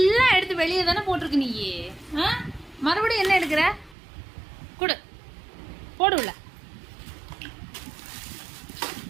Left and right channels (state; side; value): drops out; left; at 4.0 s